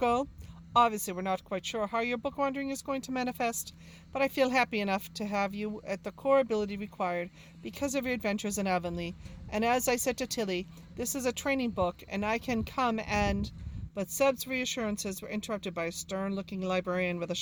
Obviously, we're not quite sure how your book wandering is going to manifest, but I feel happy enough to have you at the core ability required because of your adventures in Avonlea. And as I said to Tilly, this is a training book, and I can come and... But Seb's reassurances were interrupted by a stern-looking librarian with a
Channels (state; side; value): identical; both; correlation 1.00